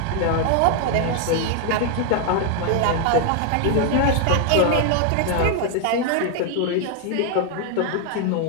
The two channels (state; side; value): different; both; correlation 0.00